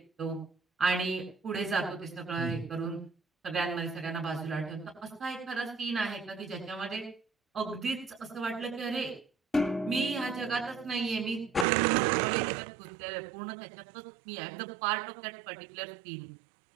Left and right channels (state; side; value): drops out; left; at 11.7 s